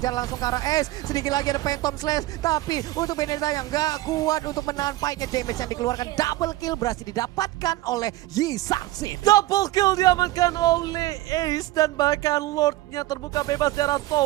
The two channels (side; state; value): left; quieter; 17.2 dB